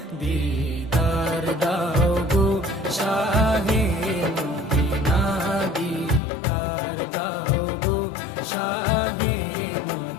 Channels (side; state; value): right; drops out; at 6.2 s